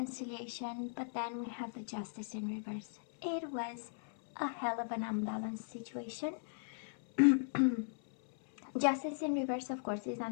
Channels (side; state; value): right; silent; 52 dB below the other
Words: but then we have the Justice in reverse. It was a hell of an unbalanced situation. Justice in reverse, of course, is